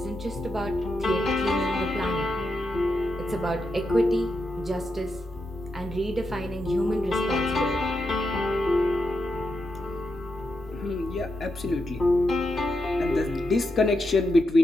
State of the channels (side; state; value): both; normal; correlation 0.85